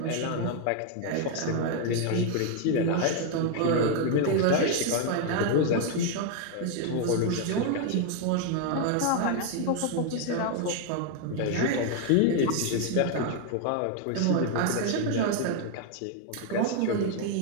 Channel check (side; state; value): both; different; correlation 0.01